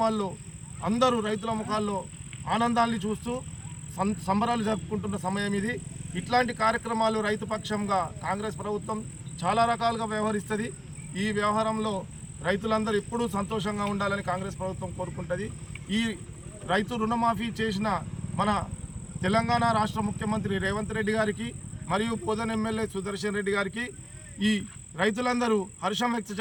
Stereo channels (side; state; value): both; identical; correlation 1.00